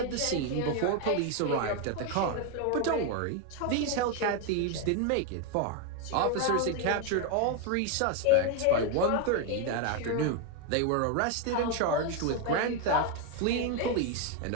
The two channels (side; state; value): both; different; correlation 0.01